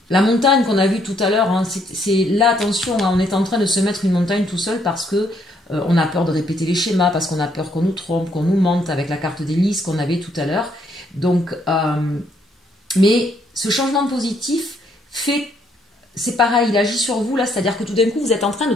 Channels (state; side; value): normal; both; correlation 0.70